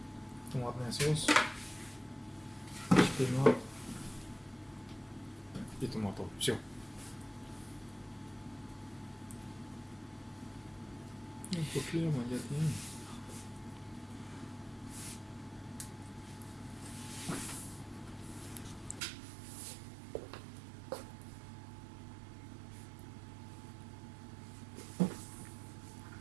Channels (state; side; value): drops out; left; at 19.0 s